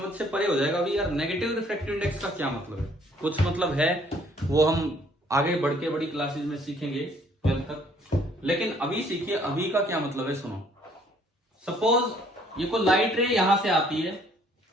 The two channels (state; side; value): normal; both; correlation 0.62